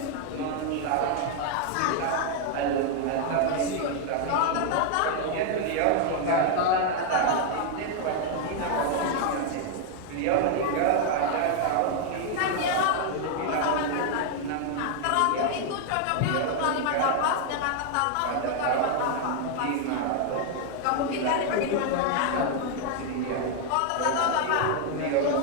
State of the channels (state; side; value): different; both; correlation 0.00